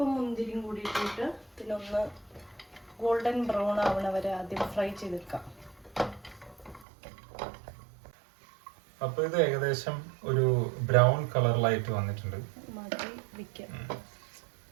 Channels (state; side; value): drops out; left; at 6.9 s